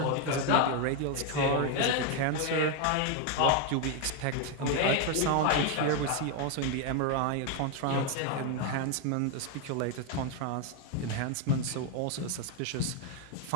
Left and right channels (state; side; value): different; both; correlation 0.01